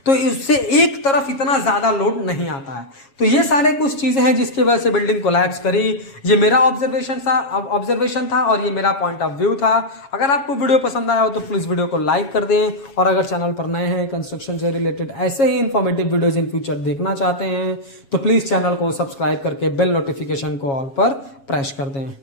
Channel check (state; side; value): late; right; 7.3 ms